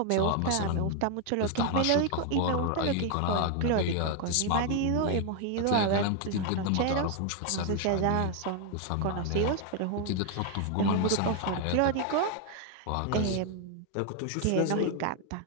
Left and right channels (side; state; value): both; different; correlation 0.01